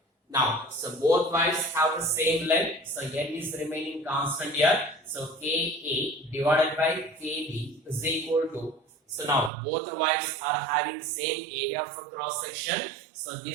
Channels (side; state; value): left; drops out; at 9.5 s